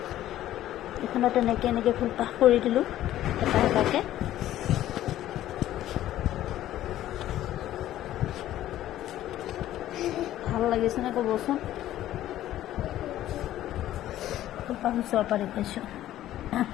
এখনত এনেকৈ ফুলপাহ কৰি দিলোঁ এটা এটাকৈ। ভাল লাগিছেনে ক'বচোন। ফুলপাহ ওচৰৰ পৰা দেখুৱাইছোঁ।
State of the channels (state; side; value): quieter; right; 13.3 dB